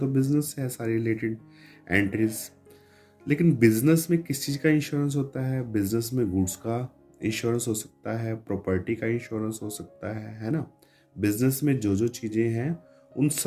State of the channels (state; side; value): identical; both; correlation 1.00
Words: बिजनेस से है सारी रिलेटेड एंट्रीज। लेकिन बिजनेस में किस चीज़ का इंश्योरेंस होता है? बिजनेस में गुड्स का इंश्योरेंस हो सकता है, प्रॉपर्टी का इंश्योरेंस हो सकता है ना? बिजनेस में जो जो चीज़ें हैं उन